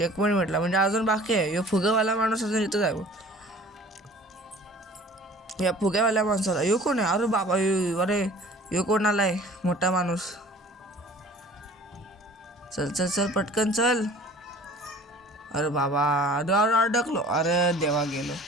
पॉईंट म्हटला म्हणजे अजून बाकी आहे. यो फुगेवाला माणूस अजून इथंच आहे. या फुग्यावाल्या माणसाला यो कोण आहे. अरे बाबा अरे यो कोण आलाय मोठा माणूस. चल पटकन चल. अरे बाबा अडकलो. अरे देवा गेलो.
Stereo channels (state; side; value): normal; both; correlation 0.47